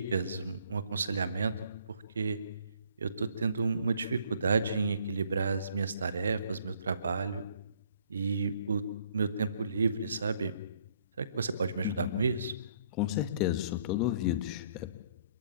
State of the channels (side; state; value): both; inverted; correlation -0.63